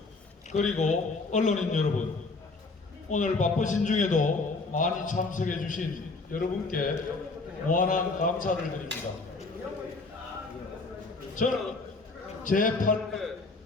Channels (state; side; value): quieter; right; 3.7 dB